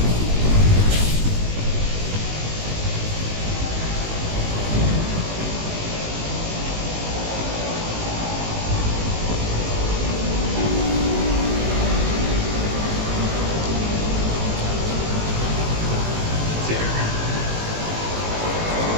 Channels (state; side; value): late; left; 19 ms